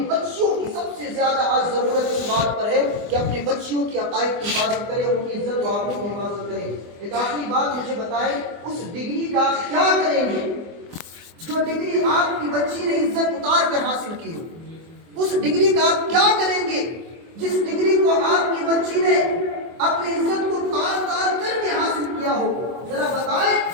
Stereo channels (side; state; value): left; late; 24 ms